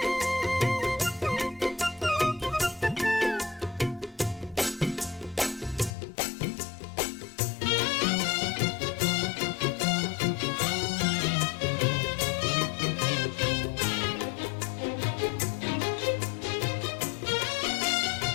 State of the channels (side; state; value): right; drops out; at 6.0 s